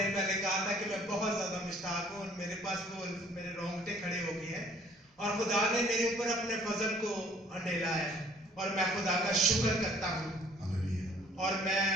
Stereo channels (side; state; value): both; normal; correlation 0.57